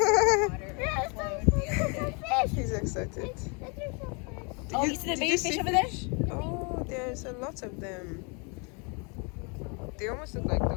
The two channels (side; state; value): right; quieter; 33.7 dB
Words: He's excited. Oh, you see the did baby you fish see over there? fish? Oh, there's a lot of them. They almost look like